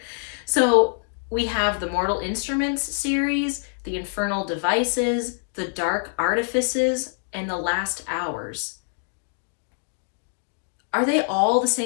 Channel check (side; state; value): right; silent; digital silence